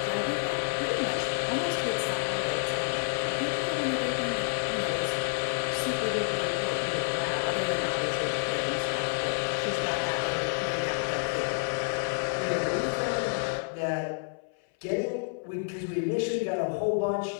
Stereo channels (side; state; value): right; silent; 58 dB below the other